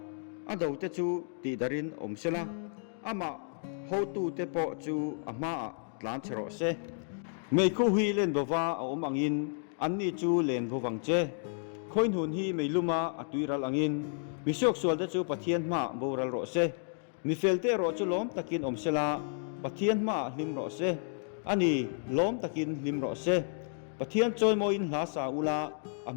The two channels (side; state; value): right; silent; digital silence